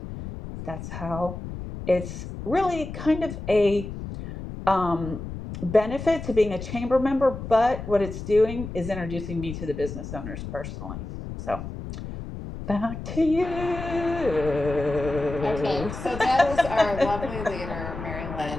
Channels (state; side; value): noise; left; rumble, 9 dB below the sound